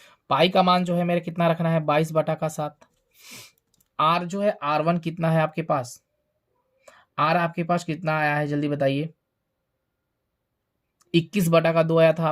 पाई का मान जो है मेरे कितना रखना है 22/7। आर जो है R1 कितना है आपके पास, आर आपके पास कितना आया है जल्दी बताइए, 21/2 आया था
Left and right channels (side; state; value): both; identical; correlation 1.00